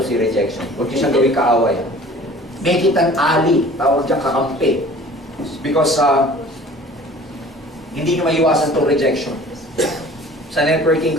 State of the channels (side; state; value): both; normal; correlation 0.47